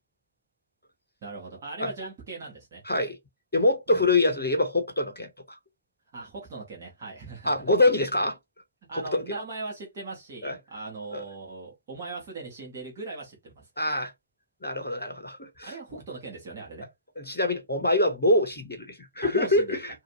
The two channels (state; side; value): inverted; both; correlation -0.55